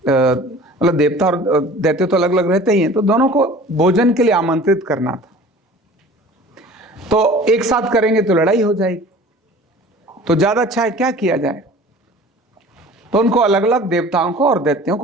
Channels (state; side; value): normal; both; correlation 0.44